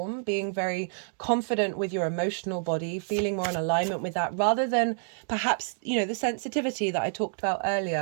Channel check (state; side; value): silent; left; digital silence